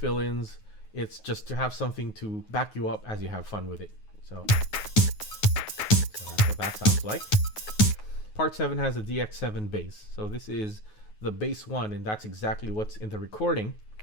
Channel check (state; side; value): late; right; 9.4 ms